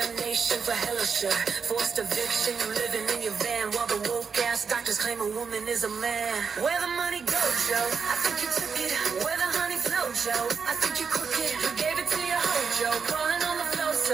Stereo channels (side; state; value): left; quieter; 5.9 dB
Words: for hella sure. Forced eviction, you living in your van while the woke ass doctors claim a woman is a man. Where the money go, Joe? I think you took it. Where the honey flow, Joe? I think you crooked. You gave it to your hoe, Joe.